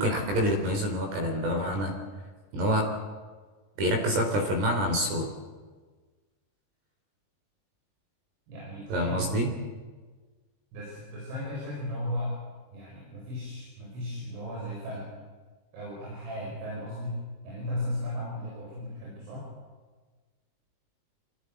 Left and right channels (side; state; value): left; late; 20 ms